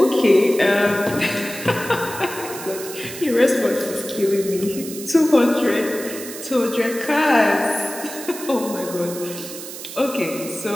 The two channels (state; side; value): noise; right; hiss, 11 dB below the sound